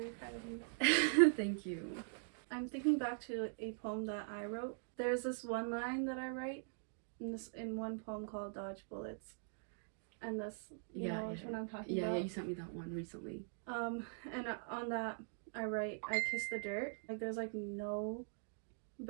proud of you. Thank you. I'm thinking back to a poem that I wrote. There's this one line that I write in one poem called Dodge Bullets. And this, you know which one I'm talking about? Yeah, you sent me that one recently. And on that, I write, I kiss the dirt. Like, there's, like, no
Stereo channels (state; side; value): silent; left; digital silence